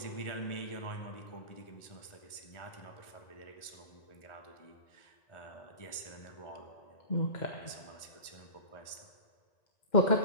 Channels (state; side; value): late; right; 1.4 ms